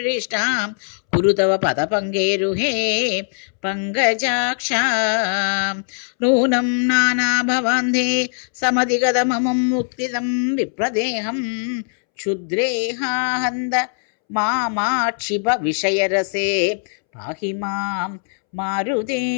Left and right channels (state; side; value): silent; right; 66 dB below the other